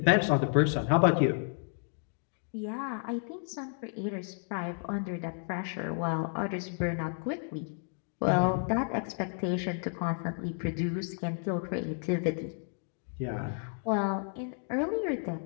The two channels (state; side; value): silent; right; 57 dB below the other